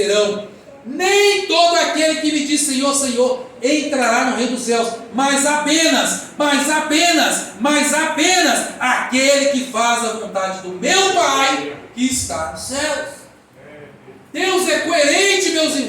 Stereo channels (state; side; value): identical; both; correlation 1.00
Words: Nem todo aquele que me diz Senhor, Senhor entrará no reino dos céus, mas apenas aquele que faz a vontade do meu Pai que está nos céus. Deus é coerente, meus